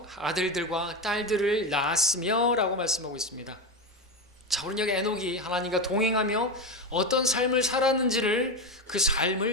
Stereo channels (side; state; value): both; normal; correlation 0.16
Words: 아들들과 딸들을 낳았으며 라고 말씀하고 있습니다. 자, 우리는 여기 에녹이 하나님과 동행하며 어떤 삶을 살았는지를 그